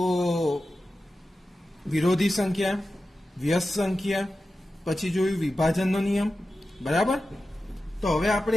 વિરોધી સંખ્યા, વ્યસ્ત સંખ્યા, પછી જોયું વિભાજનનો નિયમ. બરાબર? તો હવે આપણે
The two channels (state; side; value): normal; both; correlation 0.93